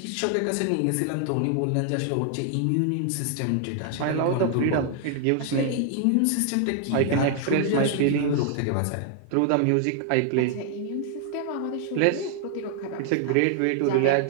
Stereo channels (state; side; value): different; both; correlation 0.00